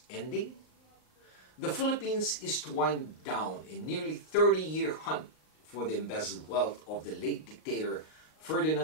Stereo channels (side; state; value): right; late; 38 ms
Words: ending? The Philippines is to wind down a nearly 30-year hunt for the embezzled wealth of the late dictator